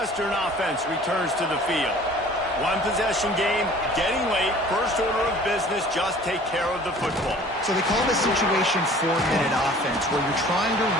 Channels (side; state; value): both; normal; correlation 0.49